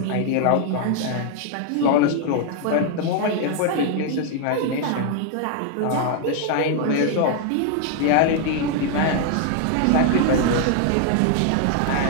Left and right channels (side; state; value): both; different; correlation 0.00